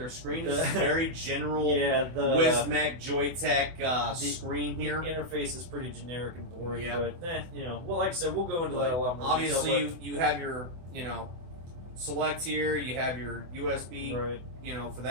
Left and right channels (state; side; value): late; left; 24 ms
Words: screen. This is very general Wismec Joytech screen here. The interface is pretty generic and boring, but well, like I said, we'll go into that a lot more. Obviously, you have your select here. You have your USB, for